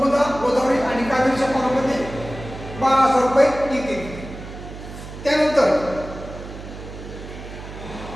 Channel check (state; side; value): noise; right; hum, 12 dB below the sound